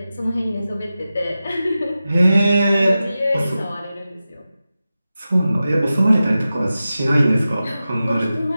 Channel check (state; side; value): inverted; both; correlation -0.93